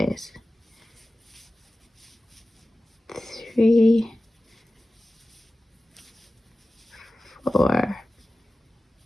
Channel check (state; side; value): normal; both; correlation 0.95